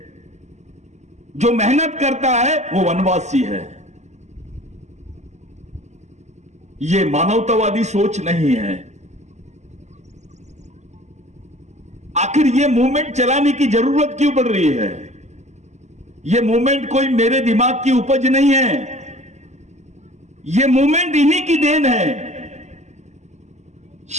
जो मेहनत करता है वो वनवासी है। ये मानवतावादी सोच नहीं है। आखिर ये मूवमेंट चलाने की जरूरत क्यों पड़ रही है? ये मूवमेंट कोई मेरे दिमाग की उपज नहीं है। ये मूवमेंट इन्हीं की देन है।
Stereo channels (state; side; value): late; left; 0.33 ms